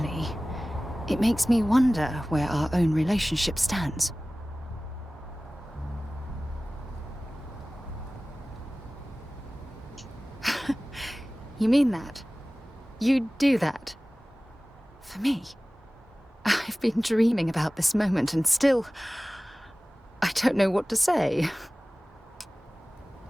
it makes me wonder where our own relationship stands. You mean that? You'd do that? For me? I've been dreaming about this moment and still... I don't know what to say.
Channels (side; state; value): both; normal; correlation 0.98